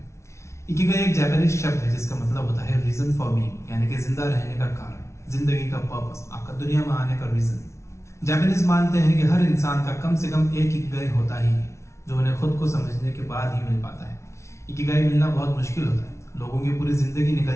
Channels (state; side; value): late; right; 0.13 ms